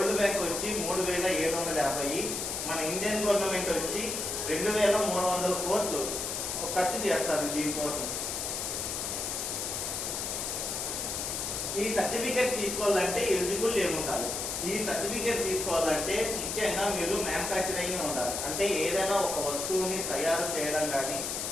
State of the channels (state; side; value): noise; left; hiss, 3 dB below the sound